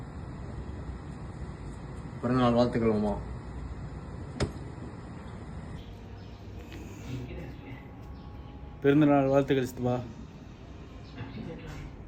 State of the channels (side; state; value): both; identical; correlation 1.00